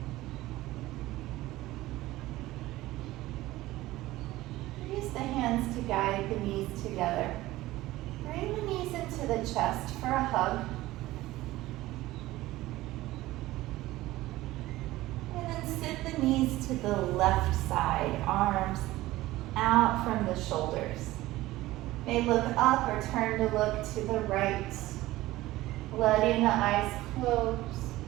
Use the hands to guide the knees together. Bring the knees into the chest for a hug. And then sit the knees to the left side, arms out from the shoulders. May look up or turn to look to the right, letting the eyes close.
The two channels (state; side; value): quieter; left; 17.2 dB